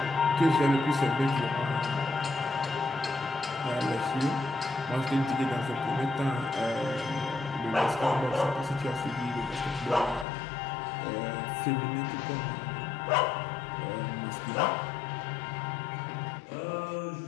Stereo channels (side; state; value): right; drops out; at 10.2 s